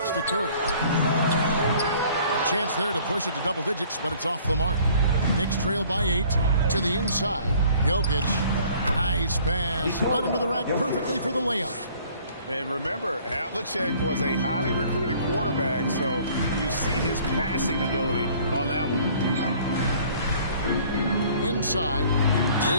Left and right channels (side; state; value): both; inverted; correlation -0.55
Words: to Curry. A chance there to push it to double digits, but it's off the mark. Knicks trail by 8 to the inside. Jokic. Nice pass. Led him to the rack perfectly for the layup. And remember, Havlicek was a highly recruited quarterback, so you see his passing ability on that one. Inside,